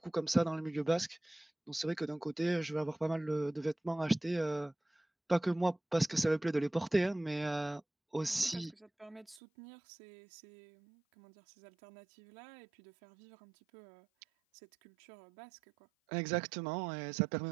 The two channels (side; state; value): left; drops out; at 9.4 s